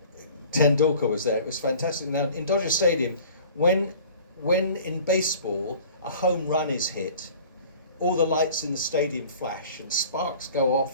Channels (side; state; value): both; inverted; correlation -0.46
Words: Tendulkar was there. It was fantastic. Now in Dodger Stadium, when in baseball a home run is hit, all the lights in the stadium flash and sparks go